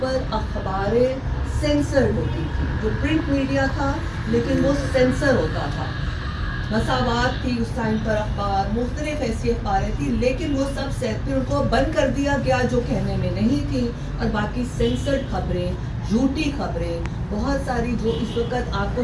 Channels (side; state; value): both; identical; correlation 1.00